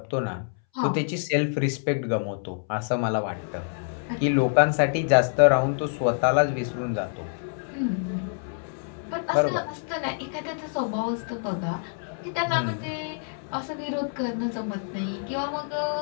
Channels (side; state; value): right; silent; 60 dB below the other